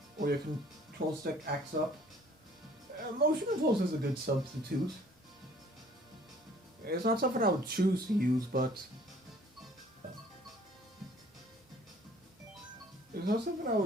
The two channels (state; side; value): normal; both; correlation 0.56